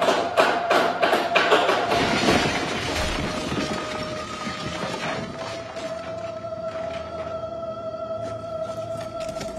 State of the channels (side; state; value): both; identical; correlation 1.00